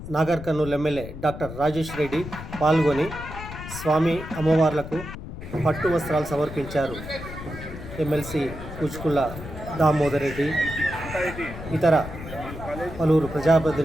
నాగర్ కర్నూల్ ఎమ్మెల్యే డాక్టర్ రాజేష్ రెడ్డి పాల్గొని స్వామి అమ్మవార్లకు పట్టు వస్త్రాలు సమర్పించారు. ఎమ్మెల్సీ కూచుకుళ్ళ దామోదర్ రెడ్డి, ఇతర పలువురు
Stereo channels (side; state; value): left; noise; rumble, 11 dB below the sound